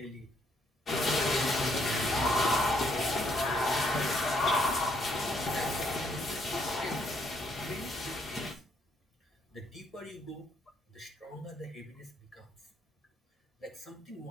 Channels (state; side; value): normal; both; correlation 0.70